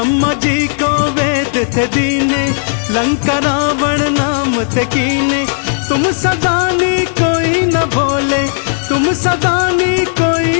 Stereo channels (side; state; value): right; silent; digital silence